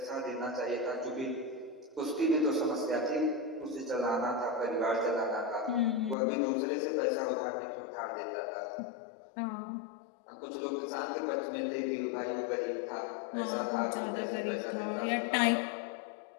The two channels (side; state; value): right; drops out; at 6.2 s